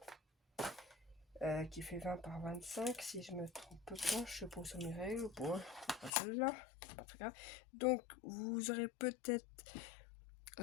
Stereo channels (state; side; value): drops out; right; at 6.1 s